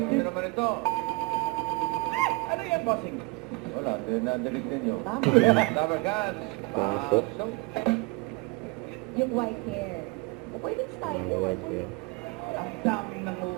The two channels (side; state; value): left; quieter; 26.8 dB